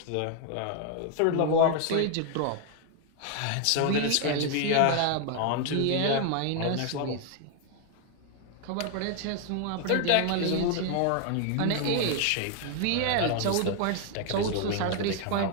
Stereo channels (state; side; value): different; both; correlation 0.00